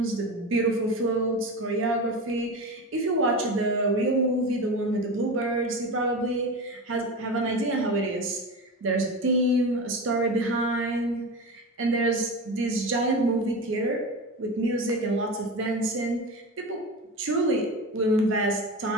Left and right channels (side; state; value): both; normal; correlation 0.26